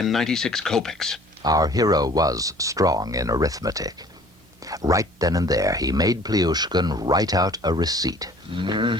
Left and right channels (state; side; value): normal; both; correlation 0.52